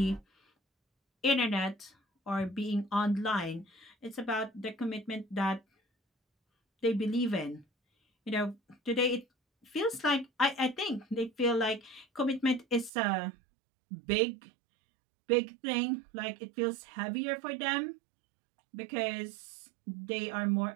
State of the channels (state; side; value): drops out; left; at 12.9 s